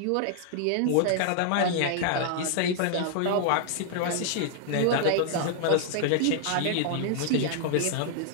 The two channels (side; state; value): both; different; correlation 0.00